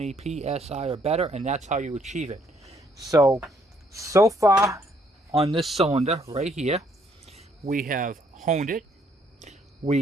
PSI or better, and that's how you achieve it. So far on this cylinder right here, we have honed it.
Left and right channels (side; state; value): both; normal; correlation 0.68